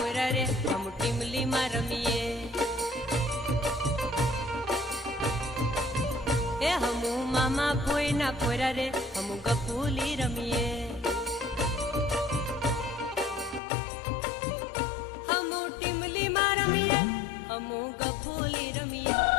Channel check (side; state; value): right; drops out; at 13.6 s